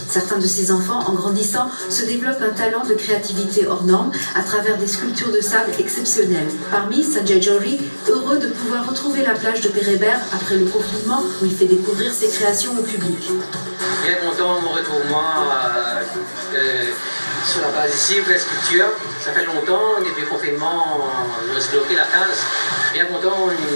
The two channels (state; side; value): inverted; both; correlation -1.00